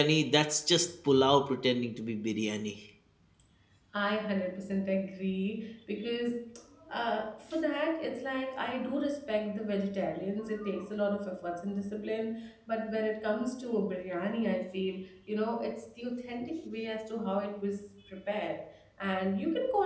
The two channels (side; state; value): both; identical; correlation 1.00